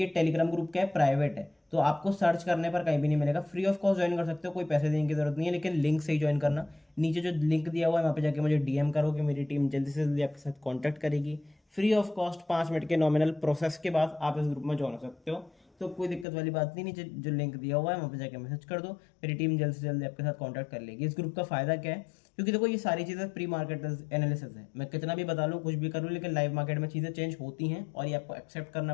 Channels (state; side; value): drops out; right; at 16.2 s